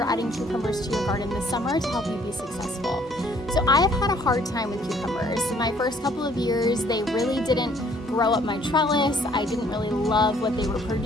adding cucumbers to your garden this summer to help you be successful. So I have had a hard time with cucumbers. My first couple of years, they really didn't grow up my trellis. I didn't really love what they were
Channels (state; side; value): normal; both; correlation 0.61